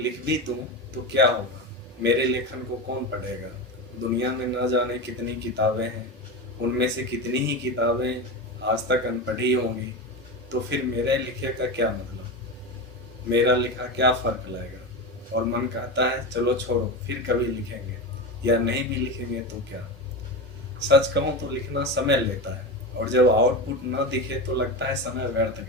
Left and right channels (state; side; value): normal; both; correlation 0.21